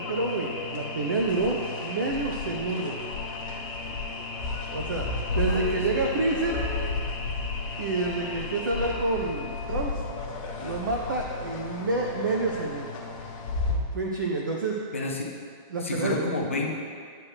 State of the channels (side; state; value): both; inverted; correlation -0.35